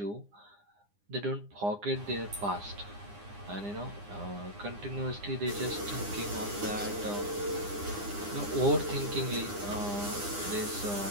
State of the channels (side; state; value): left; late; 9.8 ms